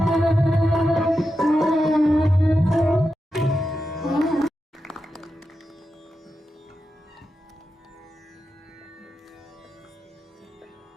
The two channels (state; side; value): normal; both; correlation 0.89